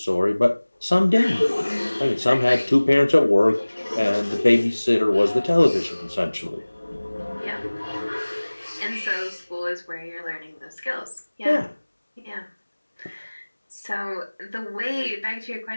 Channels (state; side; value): inverted; both; correlation -1.00